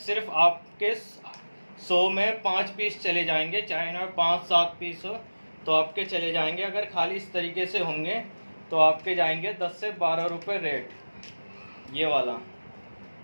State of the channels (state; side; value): inverted; both; correlation -1.00